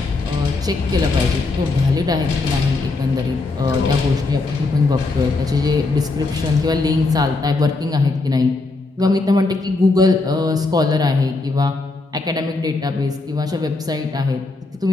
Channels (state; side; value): quieter; right; 3.4 dB